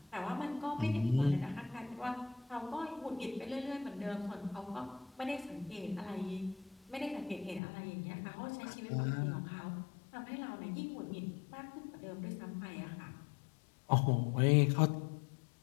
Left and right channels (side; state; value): right; drops out; at 7.6 s